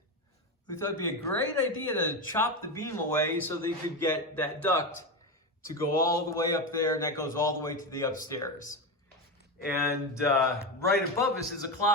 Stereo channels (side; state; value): both; normal; correlation 0.15